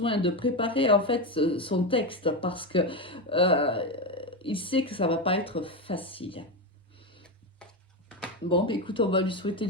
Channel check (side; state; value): both; normal; correlation 0.12